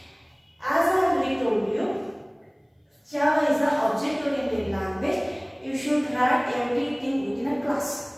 As I already told you, Java is an object-oriented language. You should write everything within a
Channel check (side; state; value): both; identical; correlation 1.00